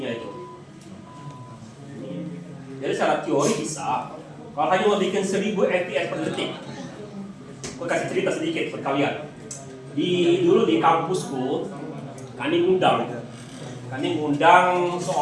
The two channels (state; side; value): identical; both; correlation 1.00